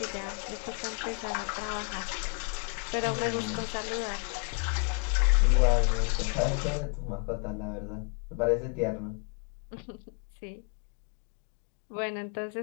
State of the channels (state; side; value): quieter; right; 38.0 dB